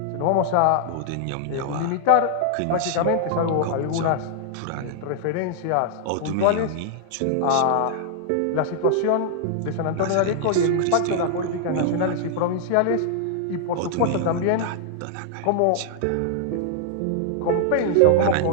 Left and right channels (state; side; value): different; both; correlation -0.01